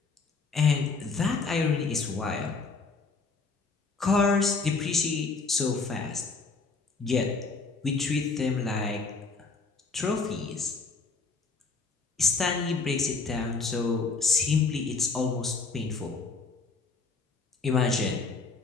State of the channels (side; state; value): right; quieter; 4.3 dB